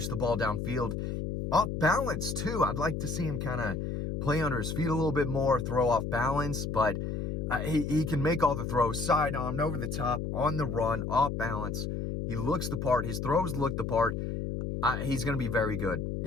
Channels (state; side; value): noise; left; hum, 3 dB below the sound